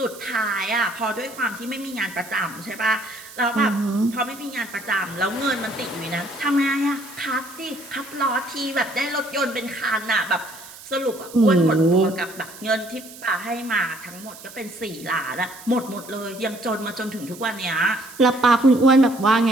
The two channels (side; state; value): right; noise; hiss, 17 dB below the sound